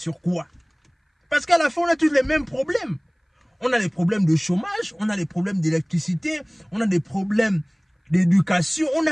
quoi? Parce qu'à la fin, on a tous les mêmes problèmes. On a les problèmes de chômage, on a les problèmes d'électricité, on a des problèmes d'éducation, on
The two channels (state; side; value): identical; both; correlation 1.00